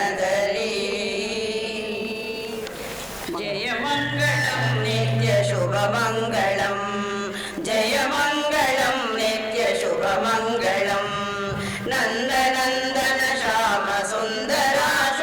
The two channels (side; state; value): both; identical; correlation 1.00